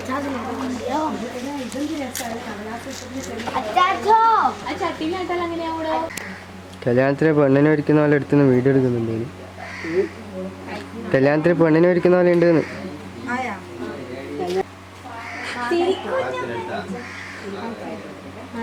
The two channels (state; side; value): identical; both; correlation 1.00